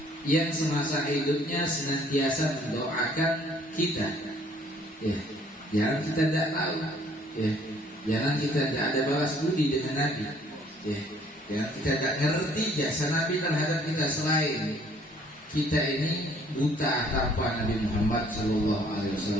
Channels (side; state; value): both; normal; correlation 0.59